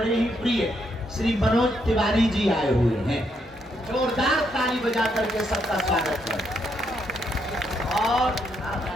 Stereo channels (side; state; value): both; normal; correlation 0.76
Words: ही प्रिय श्री मनोज तिवारी जी आए हुए हैं। जोरदार ताली बजा करके सबका स्वागत करें। और